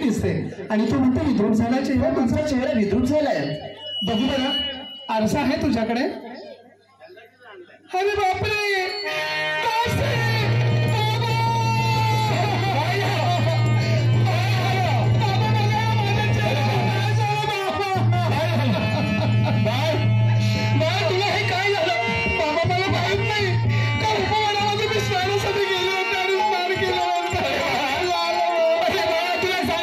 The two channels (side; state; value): both; identical; correlation 1.00